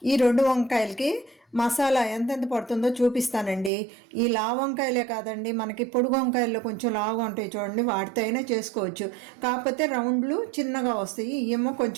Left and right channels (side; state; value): left; drops out; at 3.7 s